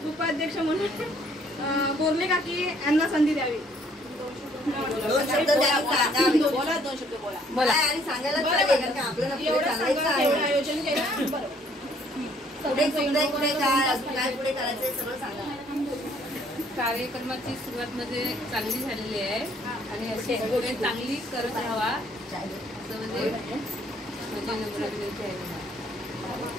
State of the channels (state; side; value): normal; both; correlation 0.63